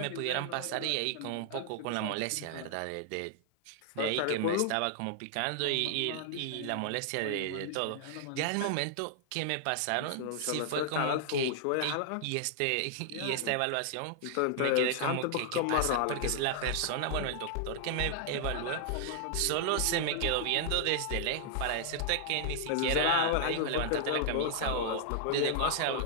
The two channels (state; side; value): different; both; correlation 0.00